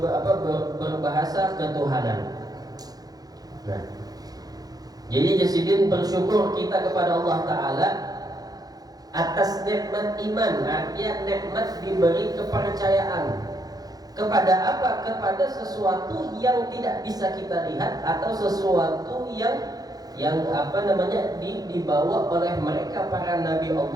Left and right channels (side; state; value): left; late; 0.19 ms